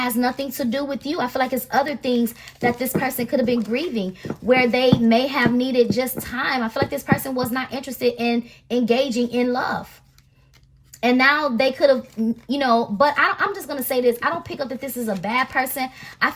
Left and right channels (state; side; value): identical; both; correlation 1.00